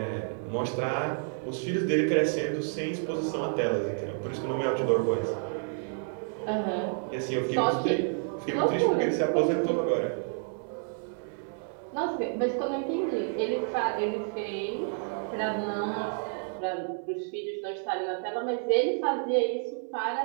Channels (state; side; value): silent; left; 58 dB below the other